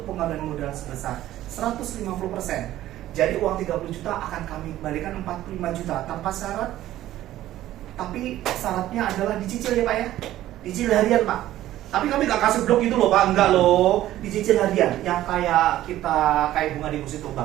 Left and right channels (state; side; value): quieter; left; 14.0 dB